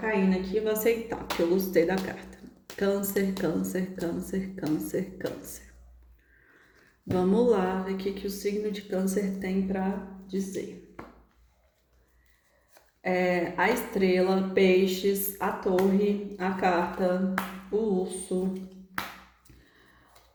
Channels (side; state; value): both; identical; correlation 1.00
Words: aqui, eu vou aceitar, porque eu gostei da carta. Câncer, câncer, câncer, câncer, câncer. Vamos lá ver o que o signo de Câncer tem para dizer. A estrela, peixes, a torre, a carta, o urso,